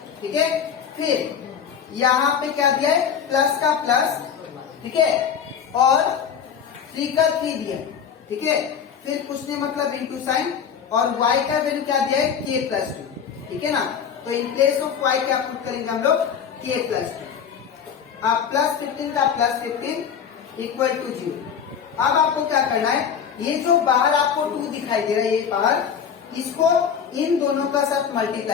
ठीक है, फिर यहाँ पे क्या दिया है, प्लस का प्लस, ठीक है, और 3 का 3 दिया। ठीक है, फिर कुछ नहीं मतलब इंटू साइन, और y का वैल्यू क्या दिया है, k प्लस 2। ठीक है ना, तो इन प्लेस ऑफ y क्या पुट करेंगे हम लोग, k प्लस 2। अब प्लस 15 का प्लस 15 इक्वल टू 0। अब आपको क्या करना है, ये जो बाहर आपको 2 दिखाई दे रहा है, ये बाहर, इसको इन दोनों का साथ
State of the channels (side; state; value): right; quieter; 7.5 dB